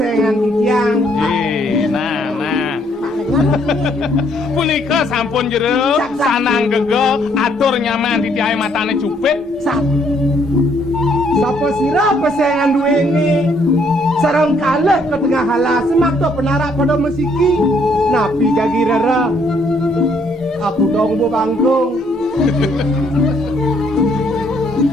di tiang. Nah. Punika sampun jero sanang gege atur nyaman di tiai matane cupit. Sapa sirep kesengan duweni. Sarang kalih ke tengah halas semakto penarak pada mesiki. Napi gagi rara. Aku dong bu bangkung.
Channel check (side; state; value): both; normal; correlation 0.68